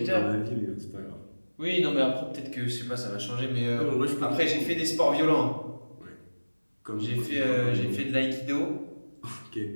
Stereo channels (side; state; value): both; inverted; correlation -1.00